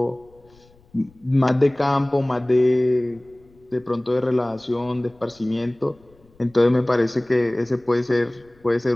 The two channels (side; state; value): left; noise; rumble, 30 dB below the sound